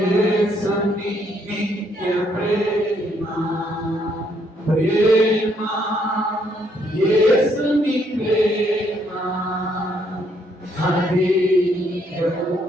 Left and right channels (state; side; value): normal; both; correlation 0.70